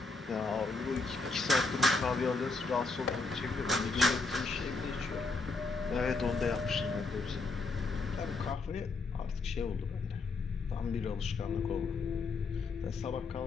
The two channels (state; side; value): quieter; right; 3.8 dB